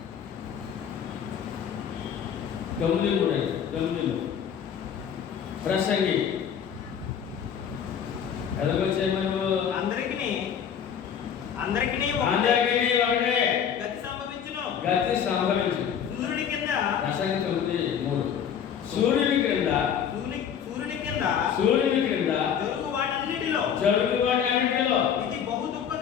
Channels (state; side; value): quieter; right; 8.2 dB